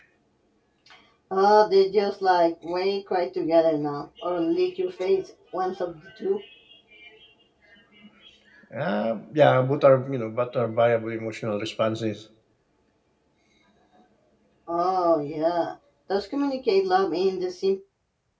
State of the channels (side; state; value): both; identical; correlation 1.00